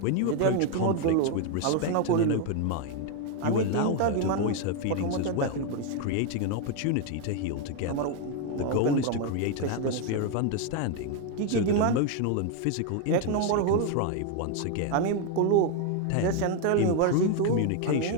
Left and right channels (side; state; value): both; different; correlation 0.01